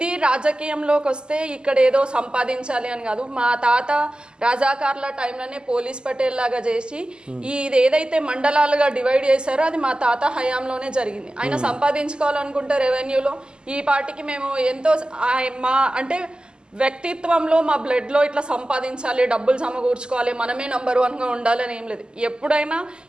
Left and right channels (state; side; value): late; left; 0.047 ms